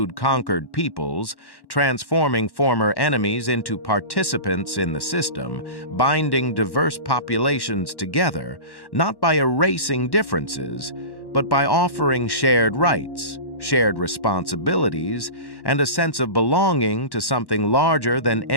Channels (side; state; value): right; late; 1.1 ms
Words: conquered peoples, transforming former enemies into participants in the system, binding diverse populations together, not by erasing differences, but by offering shared rights, shared responsibilities, and a sense of belonging to something larger than